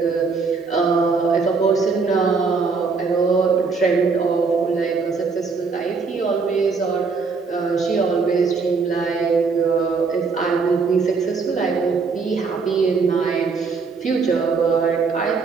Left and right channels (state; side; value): quieter; left; 4.8 dB